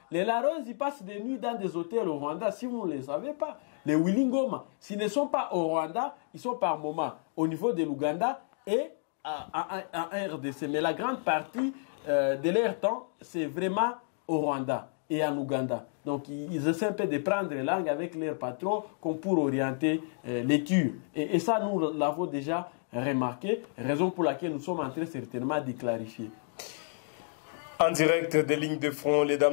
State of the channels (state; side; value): silent; right; 57 dB below the other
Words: Les Laros, ils passent des nuits dans des hôtels au Rwanda, si vous ne le savez pas. Les Willingoma, s'ils ne sont pas au Rwanda, ils sont par moment au niveau de l'Ouganda et en RDC. Mais la grande partie de leur temps, c'est vraiment au Rwanda et en Ouganda. Donc ils essaient un peu de prendre langue avec leurs patrons comme pour orienter les tirs. Et ça, nous l'avons déjà remarqué, raison pour laquelle nous sommes en train certainement de clarifier. En direct des lignes de front,